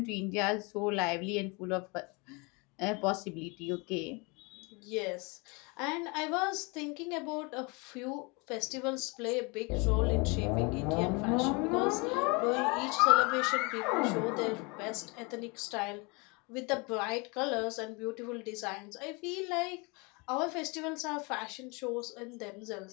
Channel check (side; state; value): right; quieter; 29.3 dB